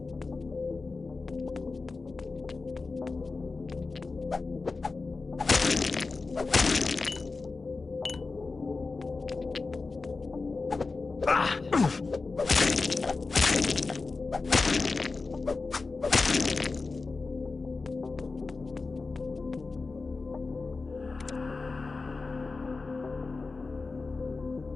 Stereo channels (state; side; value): quieter; right; 4.0 dB